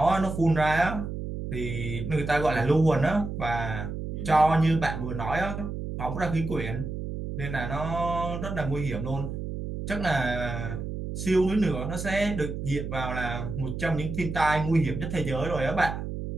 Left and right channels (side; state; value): right; noise; hum, 6 dB below the sound